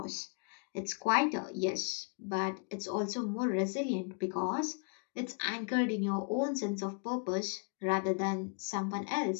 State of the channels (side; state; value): right; quieter; 37.1 dB